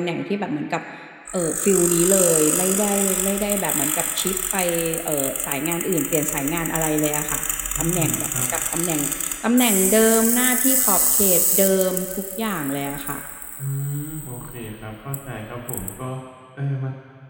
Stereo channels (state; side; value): identical; both; correlation 1.00